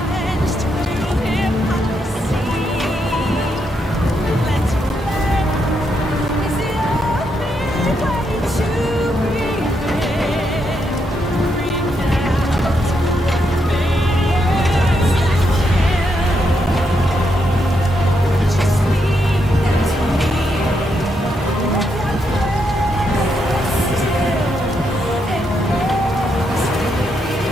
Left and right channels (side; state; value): both; normal; correlation 0.80